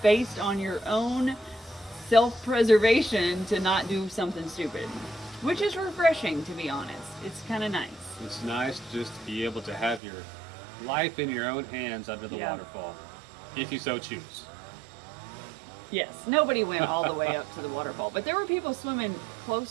based on your own self-preservation to not do something stupid, which is refreshing, to be honest. It's kind of nice. It's nice just to be able to have your life in your own hands under the Yeah. waterfall, if you so choose. Yes, nobody went all the way up to the waterfall, but there were people swimming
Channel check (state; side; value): drops out; left; at 10.0 s